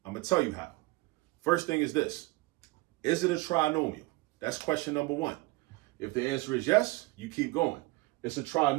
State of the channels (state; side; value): quieter; left; 22.1 dB